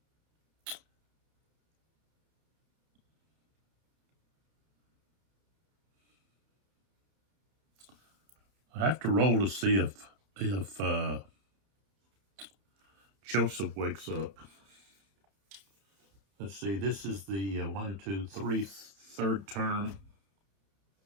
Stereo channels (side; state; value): left; late; 30 ms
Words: have to roll to see if Joseph wakes up. Let's see, this is the 1, 2, 3, third turn.